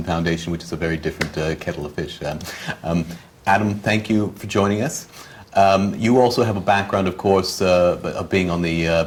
Foundation, which is a very different kettle of fish. Adam, thank you for joining us. You also have a background, of course, of being on the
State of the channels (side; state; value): both; identical; correlation 1.00